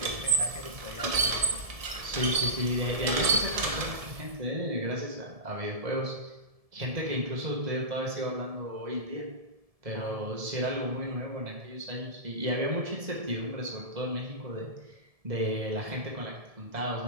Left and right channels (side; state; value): left; late; 1.7 ms